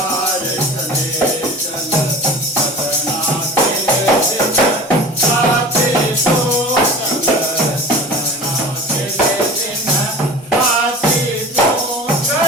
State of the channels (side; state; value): both; normal; correlation 0.37